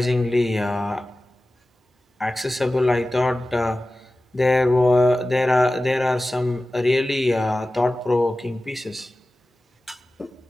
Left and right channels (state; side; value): normal; both; correlation 0.96